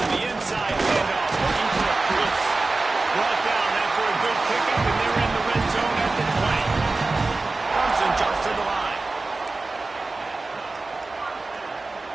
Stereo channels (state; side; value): quieter; left; 3.4 dB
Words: the inside handoff, looking for a Blitz. Brought down after a good pickup, and they're in the red zone at the 20. Clemson jumps to the line.